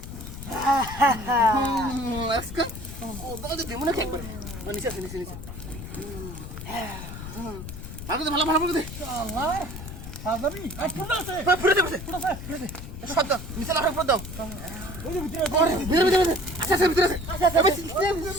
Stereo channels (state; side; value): noise; left; rumble, 10 dB below the sound